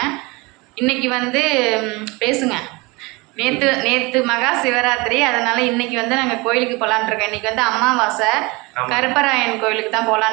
இன்றைக்கி பேசுங்க. நேற்று மகா சிவராத்திரி, அதனால் இன்றைக்கி நாங்கள் கோயிலுக்கு போகலான்ட்ருக்கோம். இன்றைக்கி அமாவாசை, கருப்பராயன் கோயிலுக்கு தான்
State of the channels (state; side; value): quieter; left; 25.2 dB